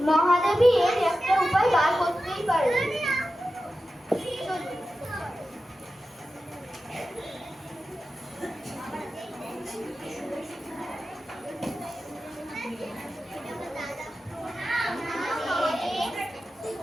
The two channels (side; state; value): both; normal; correlation 0.93